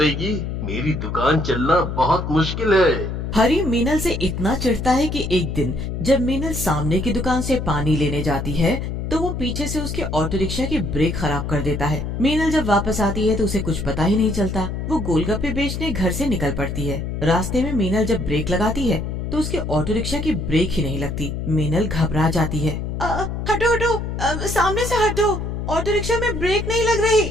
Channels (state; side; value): noise; left; hum, 4 dB below the sound